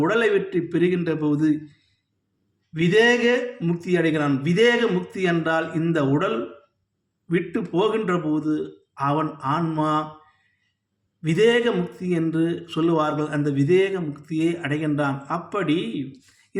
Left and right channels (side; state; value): both; identical; correlation 1.00